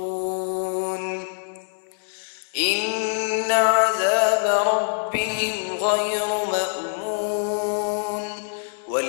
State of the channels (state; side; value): silent; right; 62 dB below the other